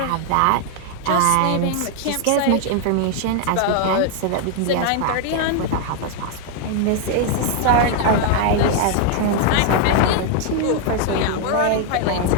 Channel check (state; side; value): different; both; correlation 0.00